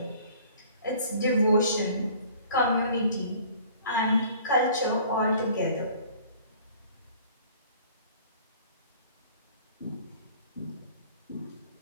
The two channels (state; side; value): inverted; both; correlation -0.51